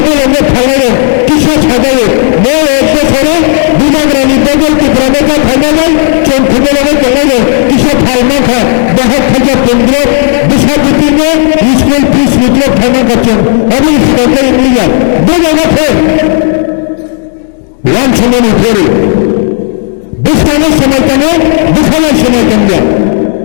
খাইলে কিসা ছাড়াইলে এক বছরে বিনাগ্রামী বদলকে প্রবেশা খাইলে চোখ খবলে কেটে কিসা ফাইমা খা 10,015 বিশাপতিনে স্কুল ফিস মিত্র ফাইমা করছেন আমি সরকারি মিলিয়া দু জায়গা ফের ওয়ান সময় ফেরে বিস্তারের সময় কেন দুখানের সময় কেন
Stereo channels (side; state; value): right; silent; digital silence